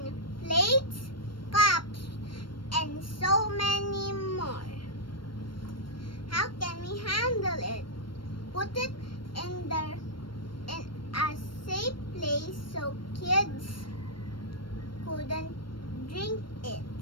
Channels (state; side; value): late; right; 0.72 ms